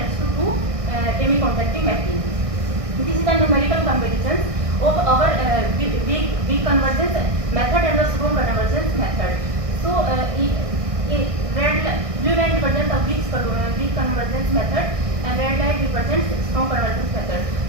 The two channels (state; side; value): late; left; 1.6 ms